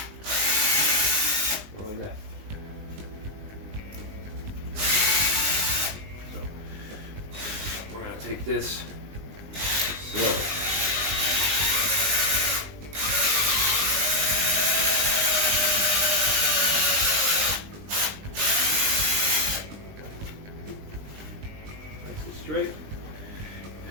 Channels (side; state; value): left; late; 20 ms